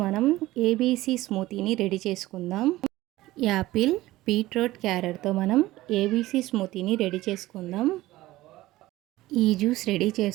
మనం ABC స్మూతీని ready చేసుకుందాం. యాపిల్, బీట్రూట్, క్యారెట్తో మనం ఏబీసీ స్మూతీని రెడీ చేసుకుందాం. ఈ జ్యూస్ రెడీ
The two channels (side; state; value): left; quieter; 17.2 dB